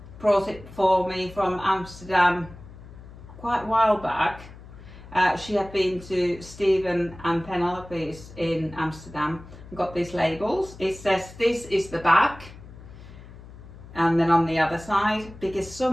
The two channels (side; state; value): left; noise; hum, 17 dB below the sound